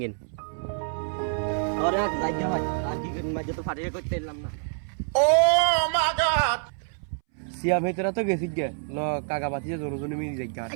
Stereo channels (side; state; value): left; silent; 60 dB below the other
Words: গিন আরে যাই ভাই আর কি করি মাঝে তো ফাটিয়ে করতে এলাম না সিয়া ভেতরা তো গেছি গিয়া ন কাকা বাতি যে জনজনে মিলি যাই